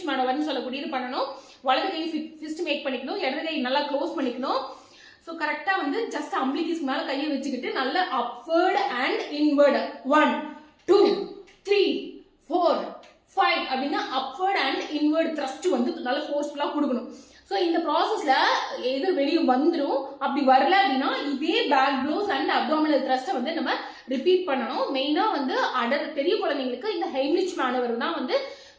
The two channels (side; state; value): both; identical; correlation 1.00